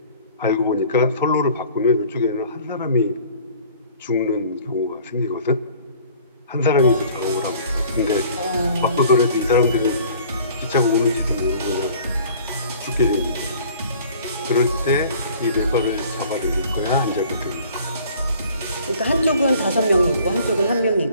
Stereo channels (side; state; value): both; inverted; correlation -0.51